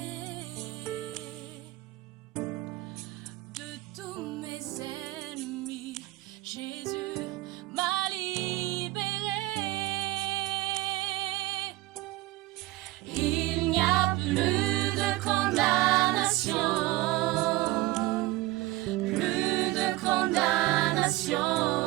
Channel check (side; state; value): left; quieter; 18.6 dB